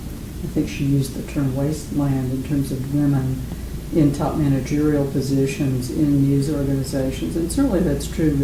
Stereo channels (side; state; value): both; identical; correlation 1.00